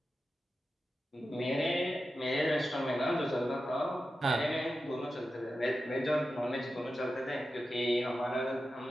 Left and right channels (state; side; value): normal; both; correlation 0.91